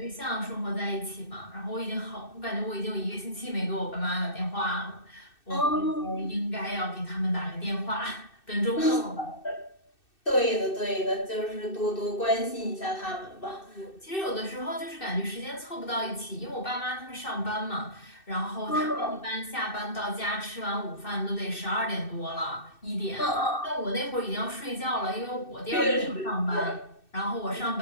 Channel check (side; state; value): right; late; 2.6 ms